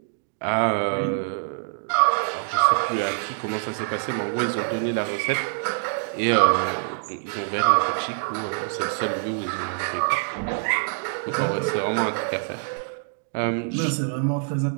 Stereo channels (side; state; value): left; silent; digital silence